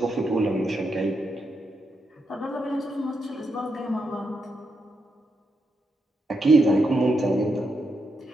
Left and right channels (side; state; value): both; normal; correlation 0.83